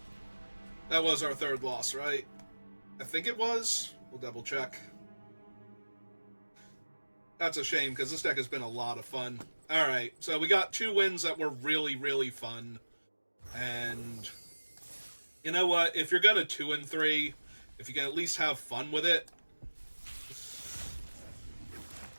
That was our 3rd loss, right? I think it was. We'll double check. That's a shame, because this deck has been a lot of fun. Alright, so we got 2 wins that were really, really fun. And you know what? If you're gonna 2 and 3, if you can at least have fun with it.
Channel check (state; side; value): inverted; both; correlation -1.00